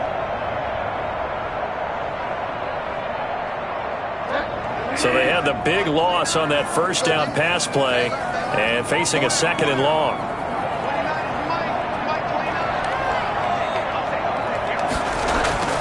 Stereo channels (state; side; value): identical; both; correlation 1.00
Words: So they had the big loss on that first down pass play and facing a 2nd and long.